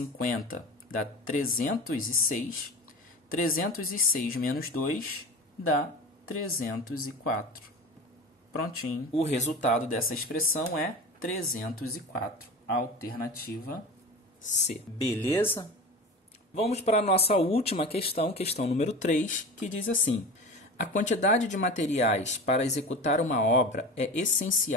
dá 306. 306 menos 2 dá 304. Prontinho. O resultado dessa expressão é 304. Alternativa C. Beleza? Vamos para a nossa última questão, questão número 3, que diz assim: a quantidade de materiais para executar uma obra é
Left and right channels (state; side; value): normal; both; correlation 0.31